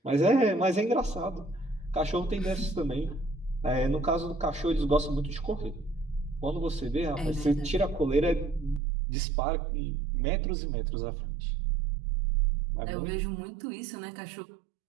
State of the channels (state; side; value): drops out; left; at 8.8 s